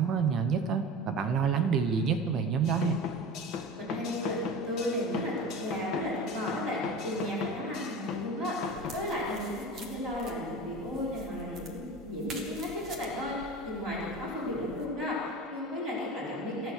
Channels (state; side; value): normal; both; correlation 0.33